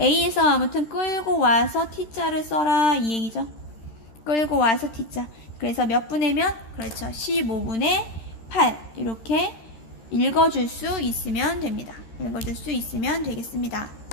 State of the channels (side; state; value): right; late; 13 ms